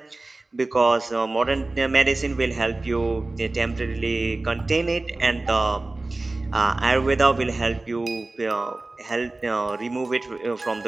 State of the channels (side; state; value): left; quieter; 3.1 dB